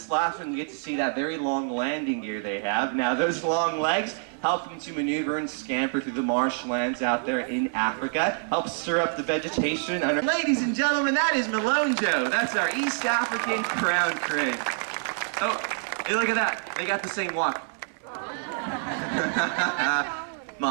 last one. You get to see that very long landing gear they have. Now, those long legs help them to maneuver and scamper through the marshlands out there in Africa. Helps stir up the vegetation. Ladies and gentlemen, that is Malone Joe. That's our East African crown crane. Oh, hey, look at that. They got the same walk.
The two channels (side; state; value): left; silent; 60 dB below the other